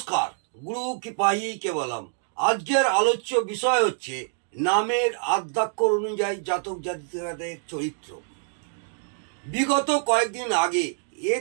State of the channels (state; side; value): silent; left; digital silence